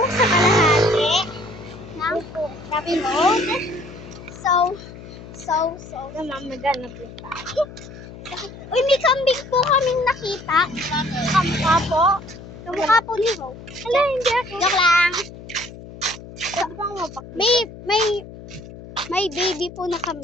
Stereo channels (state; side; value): noise; left; hum, 15 dB below the sound